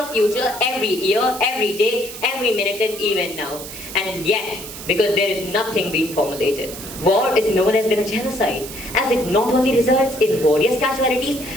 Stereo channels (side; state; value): right; noise; hiss, 12 dB below the sound